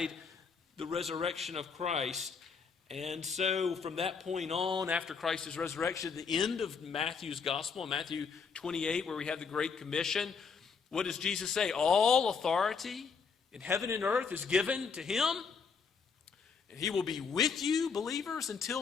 the resurrection of Christ. And so from that point on, after Christ's resurrection, the end of Matthew's gospel, Matthew 28, where we have the Great Commission, what does Jesus say? All authority in heaven and earth is given to him, and he will be with you, believers,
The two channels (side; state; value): right; quieter; 5.7 dB